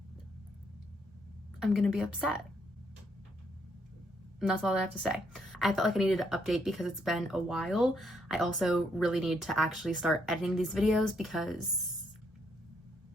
I'm gonna be upset. And that's all I have to say. I felt like I needed to update because it's been a while. I also really need to actually start editing these videos because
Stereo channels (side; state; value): both; normal; correlation 0.73